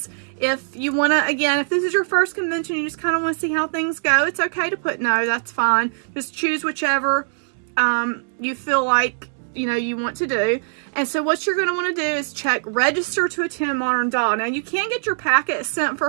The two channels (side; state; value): left; silent; digital silence